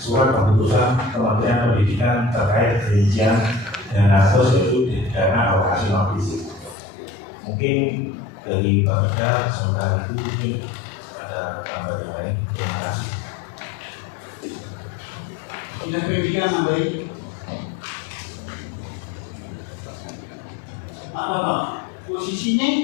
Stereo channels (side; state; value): right; drops out; at 6.8 s